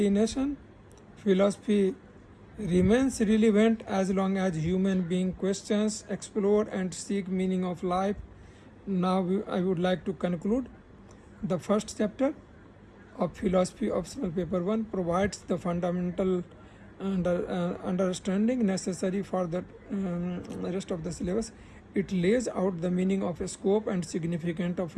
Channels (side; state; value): both; identical; correlation 1.00